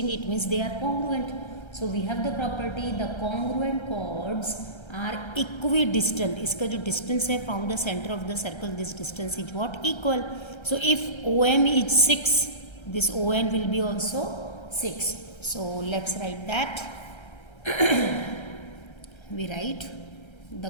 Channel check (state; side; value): late; right; 1.3 ms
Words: it means they are congruent. So we have the property the congruent chords are equidistant. इसका जो distance है from the center of the circle, this distance is what? Equal. So if OM is 6, this ON will be also 6. So let's write that. We write the